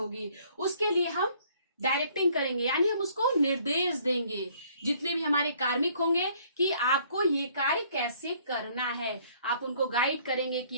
उसके लिए हम डायरेक्टिंग करेंगे, यानी हम उसको निर्देश देंगे, जितने भी हमारे कार्मिक होंगे, कि आपको ये कार्य कैसे करना है। आप उनको गाइड करेंगे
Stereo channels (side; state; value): both; inverted; correlation -0.61